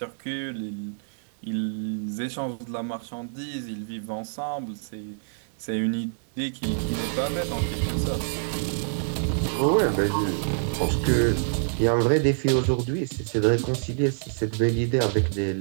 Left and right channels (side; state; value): left; silent; digital silence